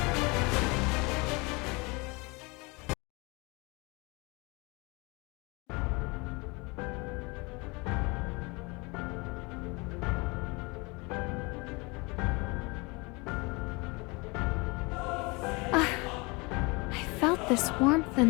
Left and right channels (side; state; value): right; quieter; 27.2 dB